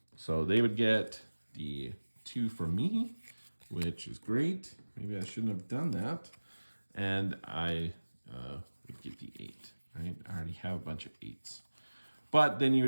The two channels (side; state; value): both; inverted; correlation -1.00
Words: So they would get the 2 from me, which is great. Maybe I shouldn't have done that. And I would get the 8, right? I already have a bunch of 8s. But then you